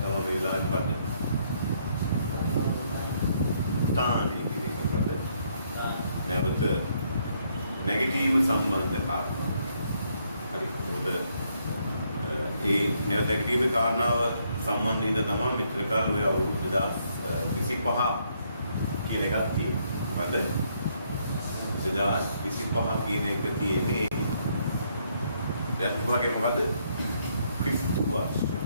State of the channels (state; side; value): inverted; both; correlation -0.72